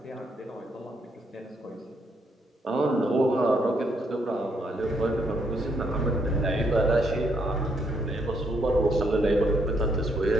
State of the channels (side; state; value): both; normal; correlation 0.74